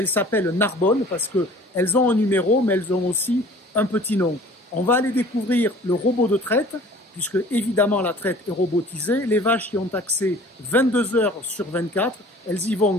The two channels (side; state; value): both; normal; correlation 0.48